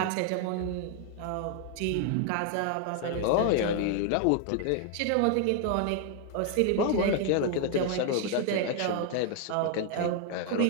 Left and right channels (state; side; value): different; both; correlation 0.00